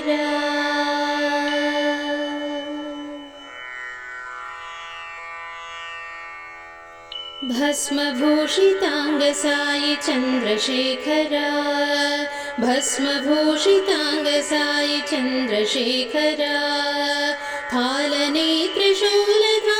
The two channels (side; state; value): both; identical; correlation 1.00